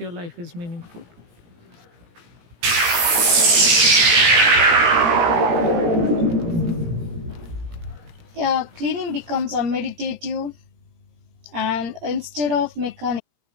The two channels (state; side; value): late; left; 17 ms